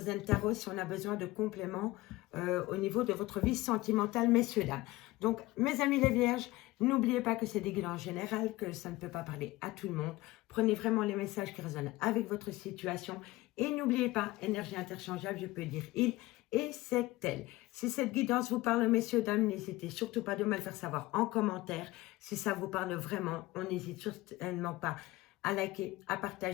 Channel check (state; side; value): quieter; right; 19.1 dB